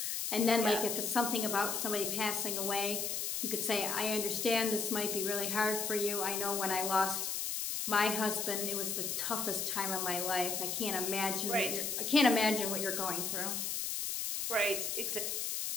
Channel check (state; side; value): noise; left; hiss, 1 dB below the sound